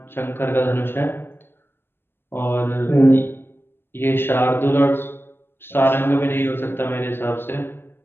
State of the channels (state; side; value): late; right; 0.11 ms